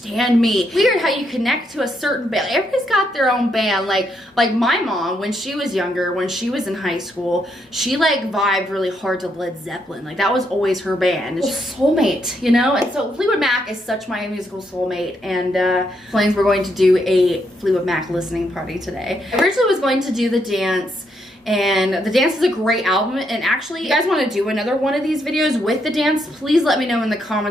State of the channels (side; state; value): both; normal; correlation 0.77